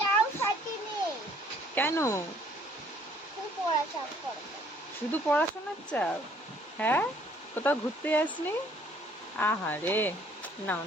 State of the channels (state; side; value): normal; both; correlation 0.60